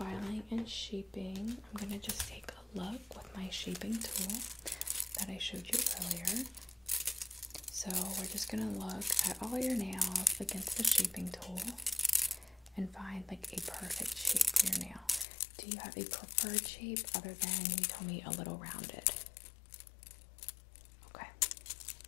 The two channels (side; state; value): right; drops out; at 15.2 s